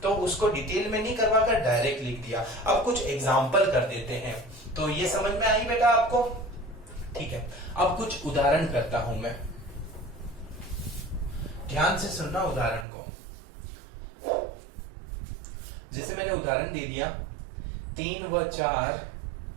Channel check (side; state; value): left; drops out; at 12.9 s